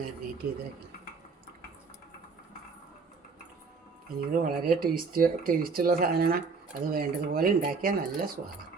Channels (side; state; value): left; quieter; 4.7 dB